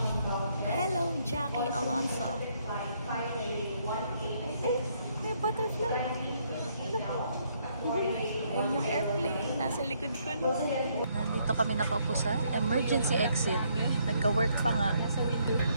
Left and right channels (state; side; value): inverted; both; correlation -0.71